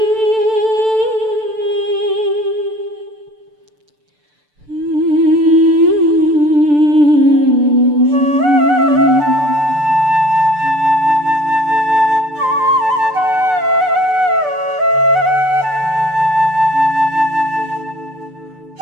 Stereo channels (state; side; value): late; left; 6.8 ms